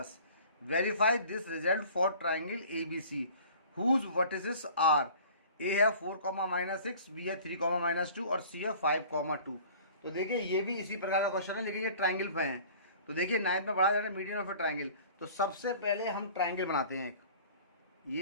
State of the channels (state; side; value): inverted; both; correlation -0.46